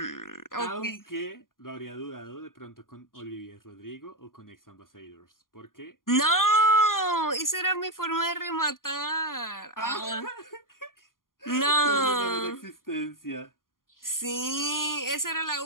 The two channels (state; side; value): late; right; 0.91 ms